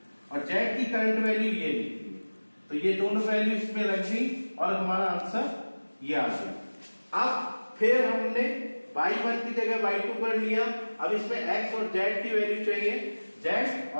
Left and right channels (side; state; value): both; inverted; correlation -1.00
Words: और z की करंट वैल्यू ये निकली है, तो ये दोनों वैल्यू इसमें रख दी और हमारा आंसर ये आ गया। अब फिर हमने y1 की जगह y2 कर लिया। अब इसमें x और z की वैल्यू चाहिए, z